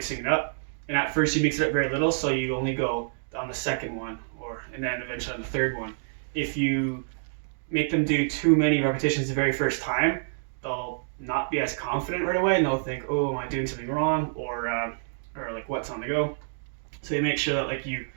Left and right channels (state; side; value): silent; left; digital silence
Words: it up. And at first, you mix it up very little, so you only go on the second one, and then eventually on the third one. If you make them do too many repetitions the very first time, they'll not be as confident right away, and they'll think, "Oh, am I doing something wrong?" or like, "What's on the go?" So you make sure that like you